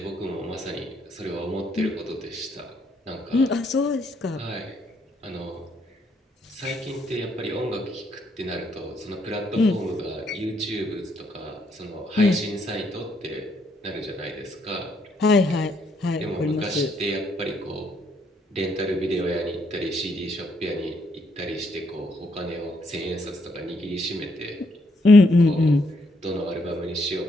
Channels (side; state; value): both; normal; correlation 0.73